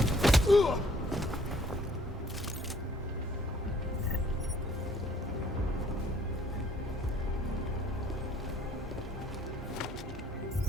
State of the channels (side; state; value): both; normal; correlation 0.60